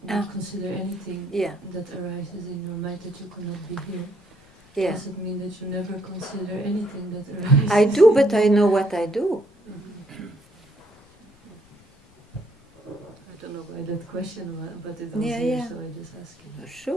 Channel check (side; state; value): left; noise; rumble, 29 dB below the sound